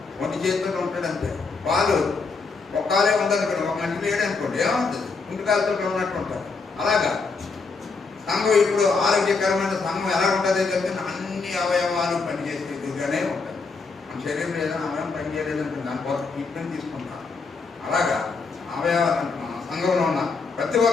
1 చేతుల్లో ఉంటాడు అంతే. పాలు ఒక్కాలే ఉందనుకోండి, ఒక మనిషి లేడనుకోండి ఏమవుతుంది? ఇంటికాలతో ఉన్నట్టు ఉంటారు. అలాగా సంఘం ఇప్పుడు ఆరోగ్యకరమైన సంఘం ఎలా ఉంటుంది అంటే అన్ని అవయవాలు పనిచేసేదిగానే ఉంటుంది. మన శరీరంలో ఏదైనా అవయవం పనిచేయలేదనుకోండి, దానికోసం ట్రీట్మెంట్ తీసుకుంటాం. అలాగా అవయవాలు సంఘంలో ఉన్న ప్రతి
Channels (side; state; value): right; quieter; 4.4 dB